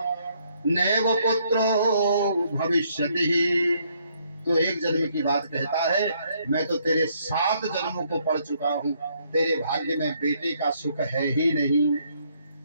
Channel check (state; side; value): inverted; both; correlation -0.70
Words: नैव पुत्रो भविष्यति। तो 1 जन्म की बात कहता है, मैं तो तेरे 7 जन्मों को पढ़ चुका हूं, तेरे भाग्य में बेटे का सुख है ही नहीं।